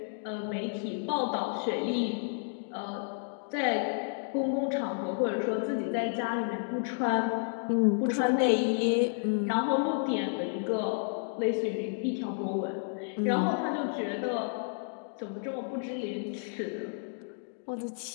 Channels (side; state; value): right; silent; digital silence